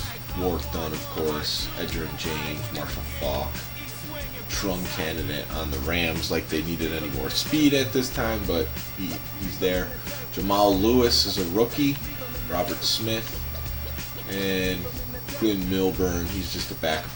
Warwick Dunn, of course, Edgerrin James, Marshall Faulk. Trung candidate on the Rams, like they needed any more speed at this time, but he's there. Jamal Lewis is a rookie. Robert Smith and Glenn Milburn, he's just a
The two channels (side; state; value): both; identical; correlation 1.00